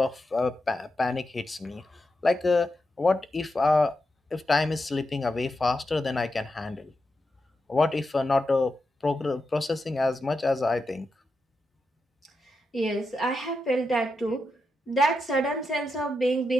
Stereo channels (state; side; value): normal; both; correlation 0.87